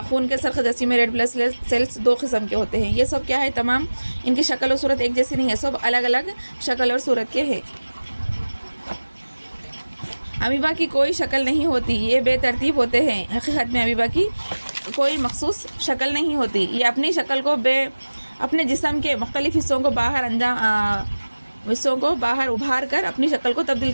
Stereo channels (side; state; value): both; inverted; correlation -1.00